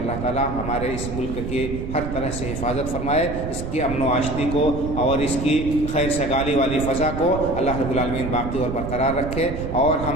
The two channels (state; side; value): noise; right; rumble, 6 dB below the sound